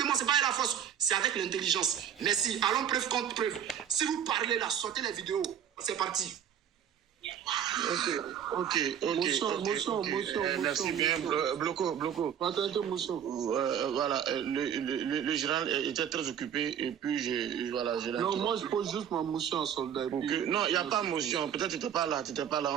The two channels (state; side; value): quieter; left; 9.0 dB